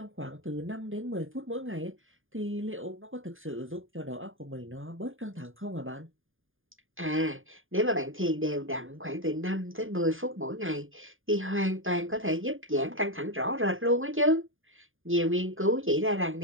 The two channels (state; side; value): late; left; 0.59 ms